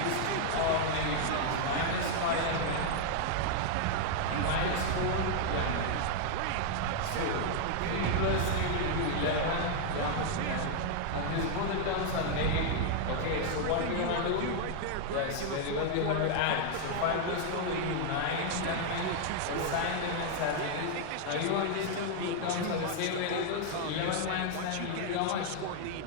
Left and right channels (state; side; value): different; both; correlation 0.00